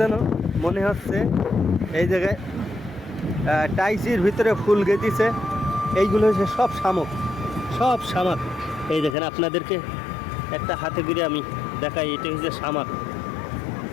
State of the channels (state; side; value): drops out; right; at 9.2 s